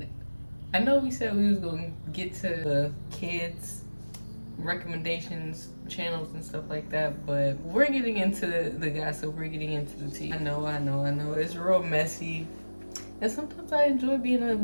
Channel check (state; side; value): inverted; both; correlation -1.00